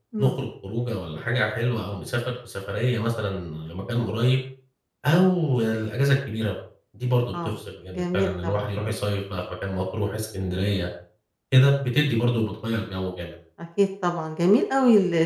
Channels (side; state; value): both; identical; correlation 1.00